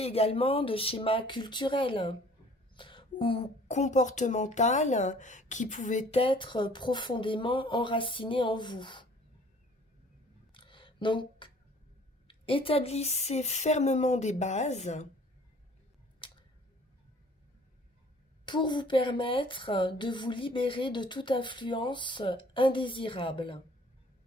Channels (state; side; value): normal; both; correlation 0.53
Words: également de schémas culturels ou comportemental qui pouvaient être profondément enracinés en vous. Donc, établissez fermement des bases pour vous permettre de vous libérer de toute influence indésirable.